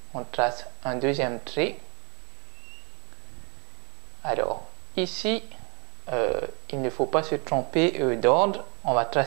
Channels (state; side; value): quieter; left; 32.5 dB